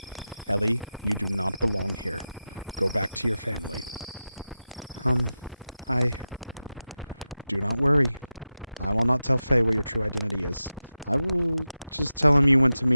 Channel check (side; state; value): both; inverted; correlation -0.93